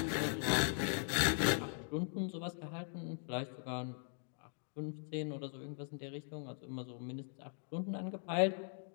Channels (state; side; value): silent; right; 51 dB below the other